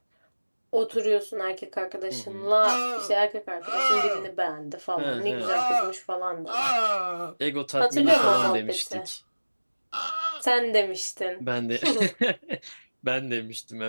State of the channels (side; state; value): both; inverted; correlation -1.00